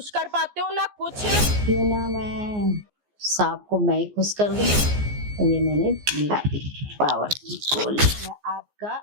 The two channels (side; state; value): left; late; 14 ms